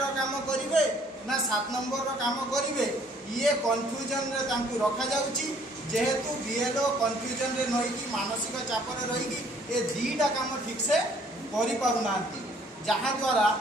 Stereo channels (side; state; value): both; normal; correlation 0.60